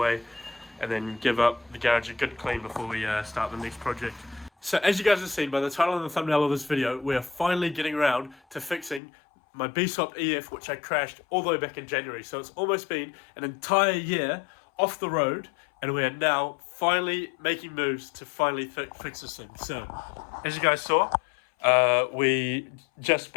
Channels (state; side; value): drops out; right; at 9.0 s